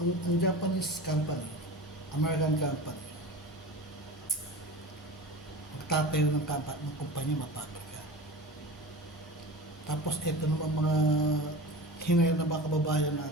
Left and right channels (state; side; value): normal; both; correlation 0.32